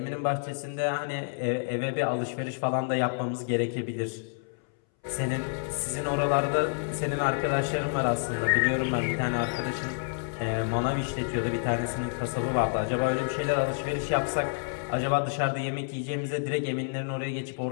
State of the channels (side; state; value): right; silent; 59 dB below the other